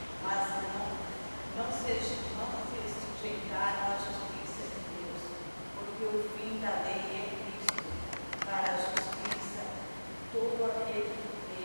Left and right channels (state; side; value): inverted; both; correlation -1.00